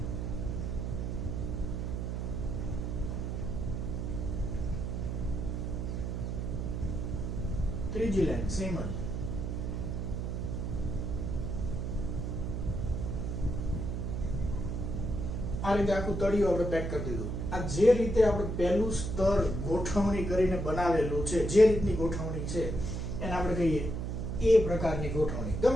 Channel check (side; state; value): right; noise; hum, 3 dB below the sound